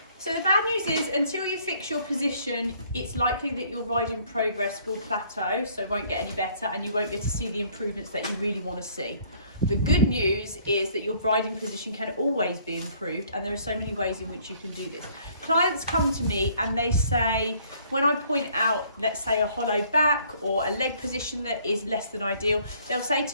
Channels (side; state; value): both; inverted; correlation -0.60